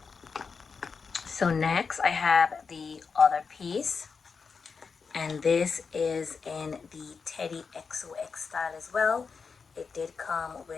So next I have the other piece, and this is in the Teddy XOX style as well. It did come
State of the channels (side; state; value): right; quieter; 5.3 dB